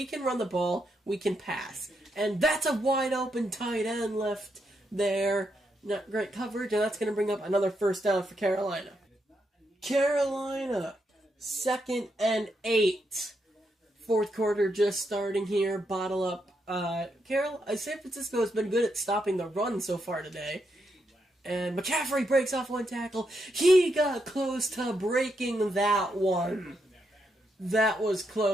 can run the ball, we can pass. And that's a wide open tight end left there. Not great coverage, and that's going to bring up another first down for Carolina. Carolina, 2nd and 8. Fourth quarter just starting here. Bottle up. San Francisco has been good at stopping the run so far today. And McCaffrey breaks off one tackle. He got close to breaking that one. That was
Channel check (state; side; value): normal; both; correlation 0.81